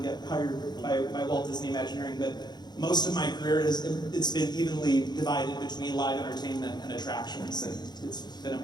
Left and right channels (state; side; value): late; right; 0.21 ms